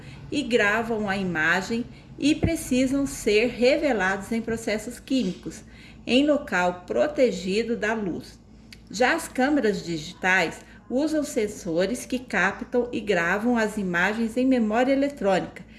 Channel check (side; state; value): both; identical; correlation 1.00